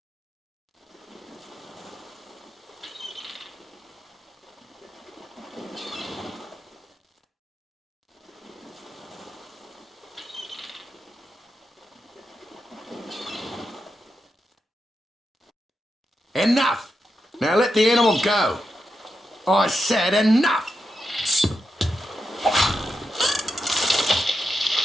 Enough! Now let the animal go. I said enough!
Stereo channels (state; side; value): normal; both; correlation 0.87